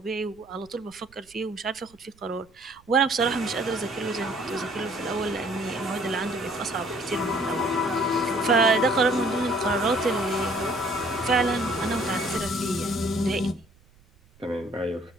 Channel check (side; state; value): right; noise; rumble, 30 dB below the sound